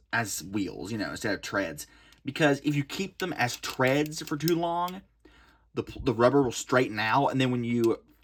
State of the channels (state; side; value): identical; both; correlation 1.00